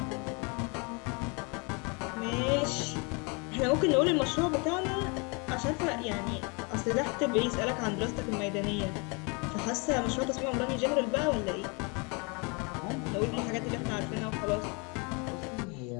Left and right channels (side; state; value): right; quieter; 31.6 dB